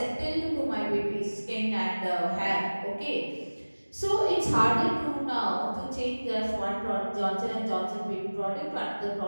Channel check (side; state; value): both; inverted; correlation -1.00